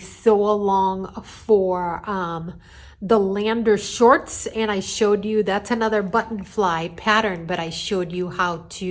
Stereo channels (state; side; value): identical; both; correlation 1.00